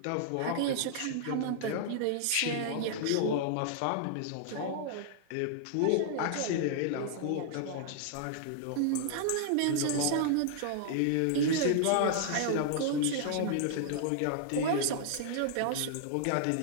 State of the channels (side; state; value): both; different; correlation -0.01